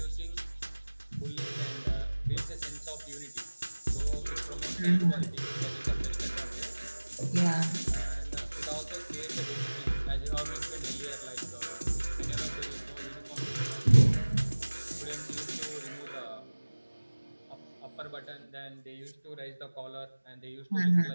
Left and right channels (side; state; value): both; inverted; correlation -1.00